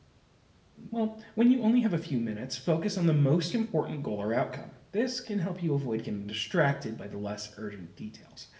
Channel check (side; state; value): both; identical; correlation 1.00